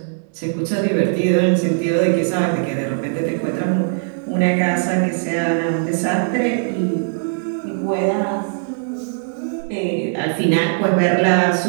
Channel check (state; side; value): silent; left; digital silence